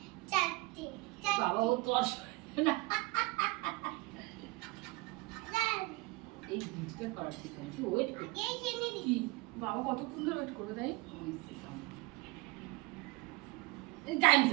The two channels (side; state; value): left; quieter; 24.5 dB